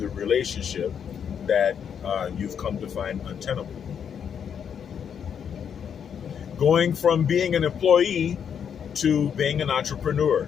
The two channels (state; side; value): quieter; right; 7.8 dB